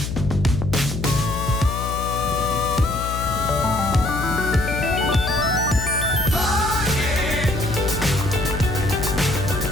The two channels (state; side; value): noise; left; hum, 5 dB below the sound